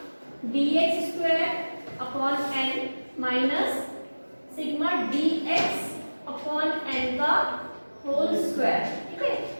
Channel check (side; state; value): both; inverted; correlation -1.00